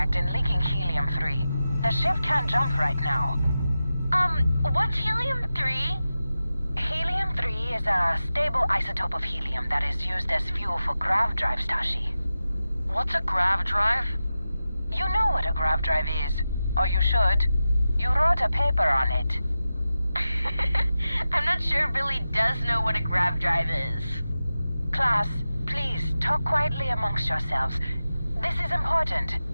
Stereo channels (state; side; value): inverted; both; correlation -0.93